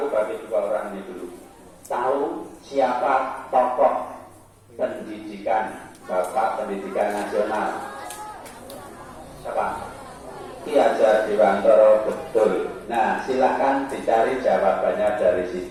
bagi dua orang ini dulu. Tahu siapa tokoh pendidikan, Bapak Pendidikan Nasional? Siapa? Ki Hajar Dewantara, betul. Nah, silakan dicari jawabannya dari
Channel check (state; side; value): identical; both; correlation 1.00